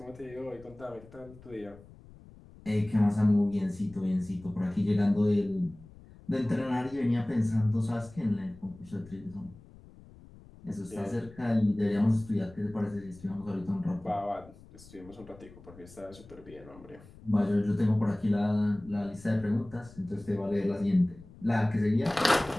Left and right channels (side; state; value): left; noise; rumble, 21 dB below the sound